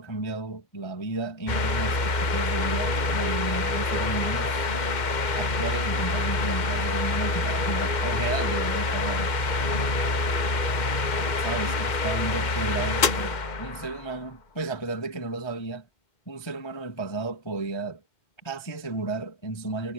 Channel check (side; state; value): right; late; 2.1 ms